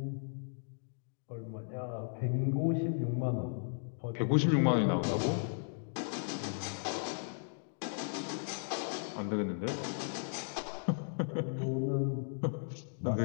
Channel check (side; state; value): right; silent; digital silence